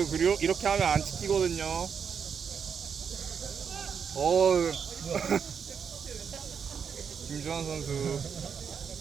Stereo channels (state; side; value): quieter; left; 6.8 dB